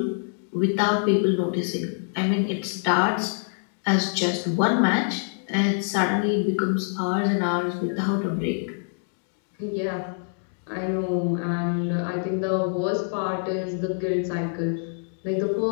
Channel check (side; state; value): right; silent; digital silence